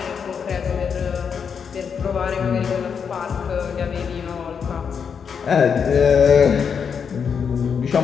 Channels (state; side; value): quieter; right; 6.7 dB